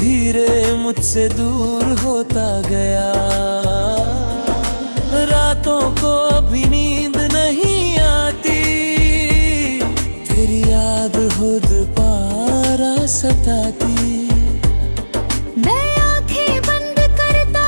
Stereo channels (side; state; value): both; inverted; correlation -1.00